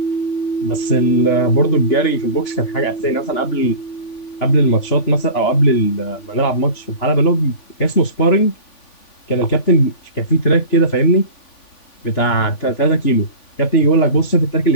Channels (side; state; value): right; late; 3.5 ms